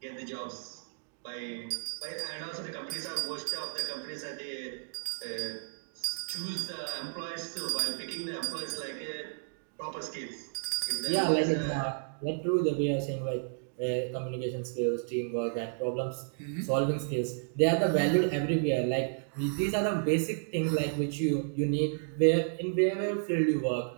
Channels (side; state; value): left; silent; digital silence